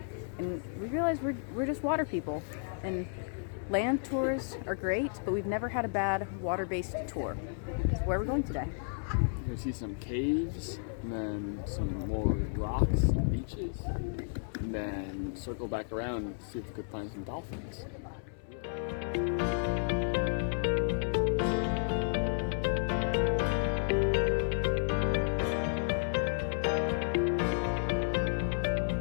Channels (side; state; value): right; silent; 56 dB below the other